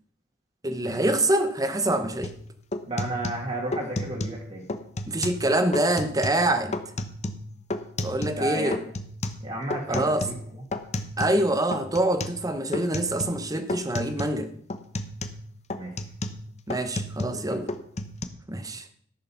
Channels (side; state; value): both; normal; correlation 0.54